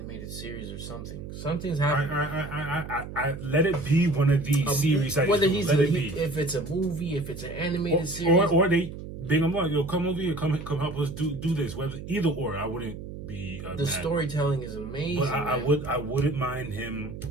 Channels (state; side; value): noise; right; hum, 10 dB below the sound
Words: series or something. Something's happening. I let it be one of these series. Whether if it's a movie, if it's an animated series, or they bring him on. Yo, come over here, come help us do this. Whether either or, I wouldn't be. The storytelling is amazing. But I wouldn't mind him